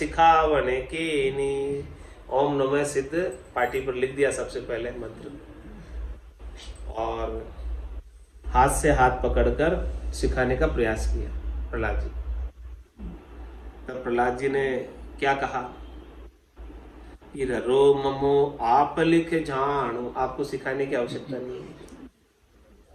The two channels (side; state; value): both; identical; correlation 1.00